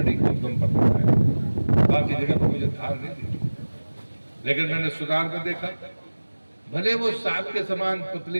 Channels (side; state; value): both; inverted; correlation -1.00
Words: के उद्गम पर दिखा है, बाकी जगह पर मुझे धार नहीं दिखी। लेकिन मैंने सुधार में देखा, भले वो सांप के समान